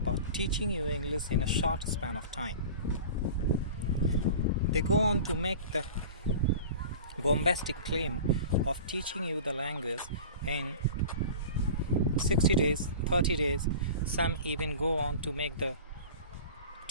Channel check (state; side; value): inverted; both; correlation -0.37